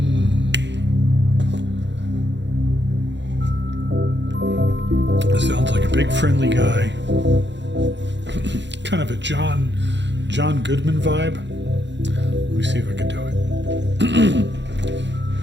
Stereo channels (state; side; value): late; left; 0.52 ms